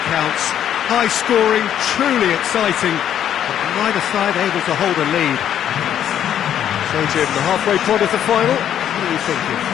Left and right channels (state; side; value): quieter; right; 10.1 dB